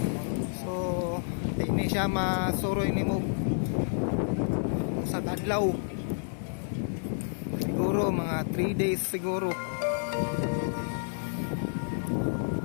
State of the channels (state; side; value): silent; right; digital silence